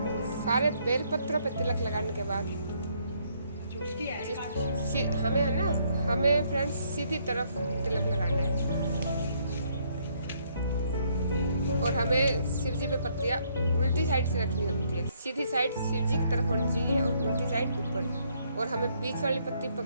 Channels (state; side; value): inverted; both; correlation -0.69